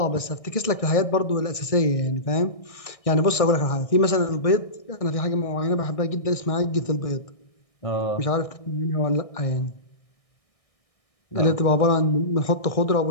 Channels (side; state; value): right; late; 1.6 ms